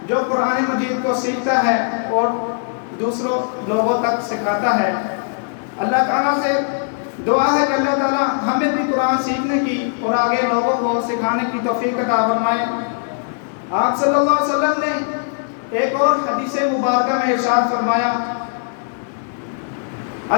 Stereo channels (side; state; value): right; silent; digital silence